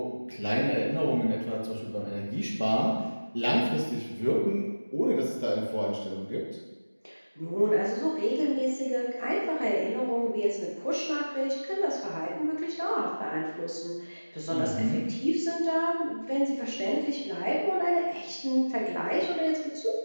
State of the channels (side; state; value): both; inverted; correlation -1.00